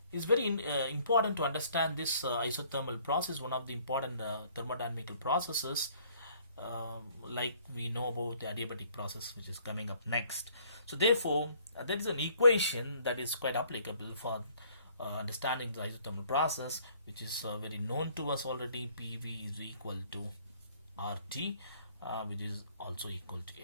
It's very important to understand this isothermal process, one of the important thermodynamical processes. Like we know about the adiabatic process, which is coming up next. So therefore there is an equation that is quite applicable for understanding the isothermal process, which is very known to us already. PV is equal to RT, which is also equal to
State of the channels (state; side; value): inverted; both; correlation -0.60